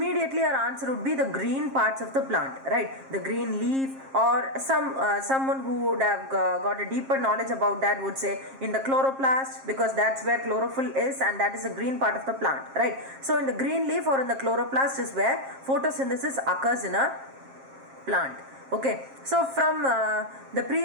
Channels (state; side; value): late; left; 7.5 ms